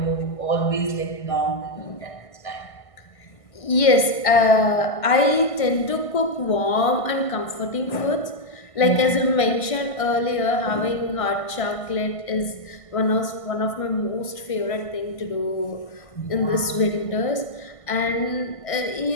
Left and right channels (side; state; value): right; late; 1.5 ms